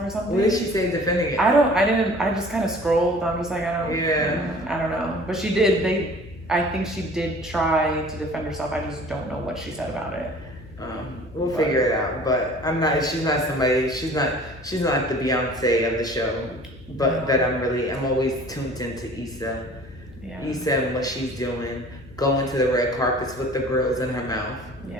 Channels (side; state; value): left; noise; hum, 22 dB below the sound